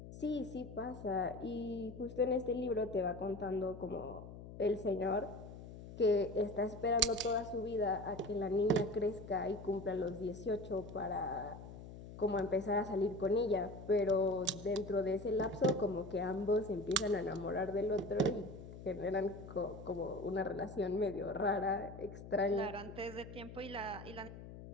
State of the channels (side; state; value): left; noise; hum, 13 dB below the sound